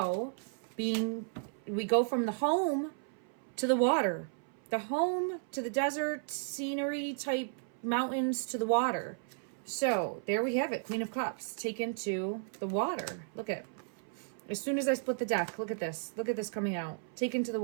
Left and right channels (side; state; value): left; silent; 55 dB below the other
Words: we go from the home to the water, the home to the desert scenery type mountains to the water. So there we have it, Queen of Cups taken to the water. Look at, as soon as I split the deck, look at this coming out, taken to the